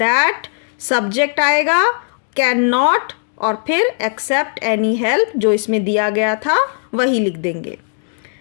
सब्जेक्ट आएगा कैन नॉट और फिर एक्सेप्ट एनी हेल्प जो इसमें दिया गया था वही लिख देंगे।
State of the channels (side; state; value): right; silent; digital silence